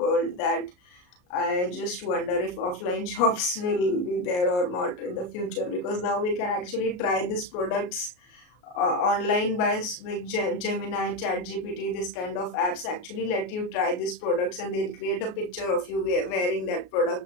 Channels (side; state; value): right; late; 33 ms